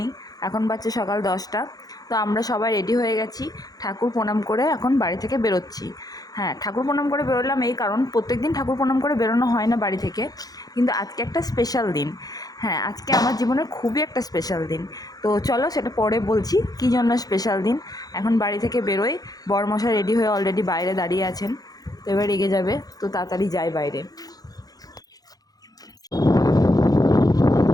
এখন বাজছে সকাল 10টা। তো আমরা সবাই রেডি হয়ে গেছি, ঠাকুর প্রণাম করে এখন বাড়ি থেকে বেরোচ্ছি। হ্যাঁ, ঠাকুর প্রণাম করে বেরোলাম এই কারণ প্রত্যেক দিন ঠাকুর প্রণাম করে বেরোনো হয় না বাড়ি থেকে, কিন্তু আজকে একটা স্পেশাল দিন। হ্যাঁ, আজকে আমার জীবনের খুবই একটা স্পেশাল দিন। তো চলো সেটা পরে বলছি কী জন্য স্পেশাল দিন। এখন বাড়ি থেকে বেরোই। বরমশাই রেডি হয়ে অলরেডি বাইরে দাঁড়িয়ে আছেন, তো এবার এগিয়ে যাবে, তো তাড়াতাড়ি যাই বাইরে।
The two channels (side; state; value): right; late; 0.18 ms